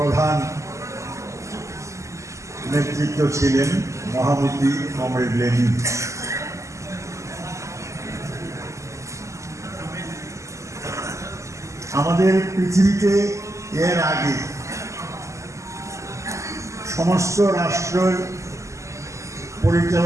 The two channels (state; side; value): late; left; 0.15 ms